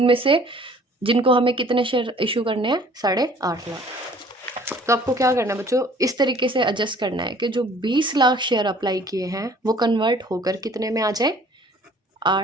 से जिनको हमें कितने शेयर इशू करने हैं? 8.5 लाख। तो आपको क्या करना है बच्चों? इस तरीके से एडजस्ट करना है कि जो 20 लाख शेयर अप्लाई किए हैं वो कन्वर्ट होकर कितने में आ जाए?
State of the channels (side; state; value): both; normal; correlation 0.54